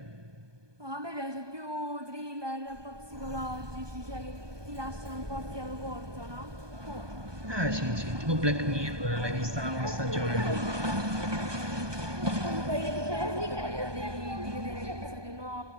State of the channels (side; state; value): left; late; 1.2 ms